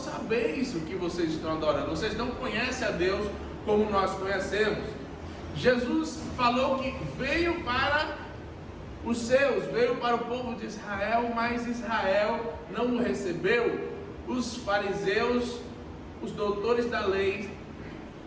o que vocês estão adorando, vocês não conhecem a Deus como nós conhecemos. Jesus falou que veio para os seus, veio para o povo de Israel, mas Israel não o recebeu. Os fariseus, os doutores da lei,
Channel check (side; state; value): both; identical; correlation 1.00